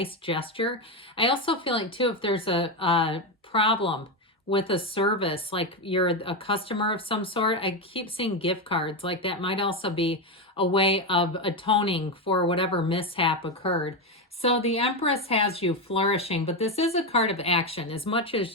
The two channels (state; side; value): normal; both; correlation 0.11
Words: gesture. I also feel like, too, if there's a problem with a service, like you're a customer of some sort, I keep seeing gift cards. Like that might also be a way of atoning for whatever mishap occurred. So the Empress has you flourishing, but this is a card of action. As much